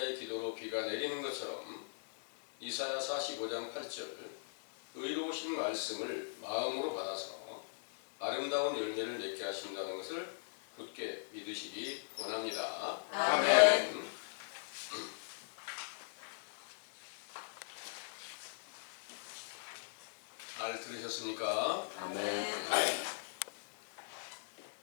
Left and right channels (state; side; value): silent; right; 52 dB below the other